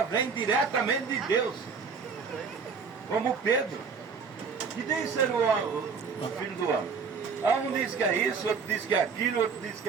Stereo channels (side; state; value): left; quieter; 5.5 dB